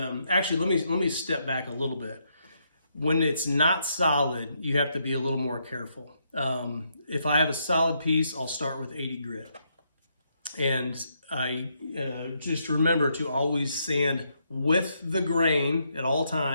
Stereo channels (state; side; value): inverted; both; correlation -0.77